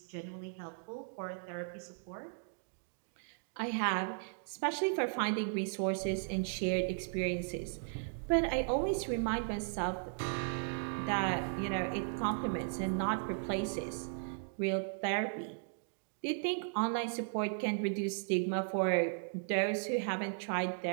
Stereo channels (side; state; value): left; silent; digital silence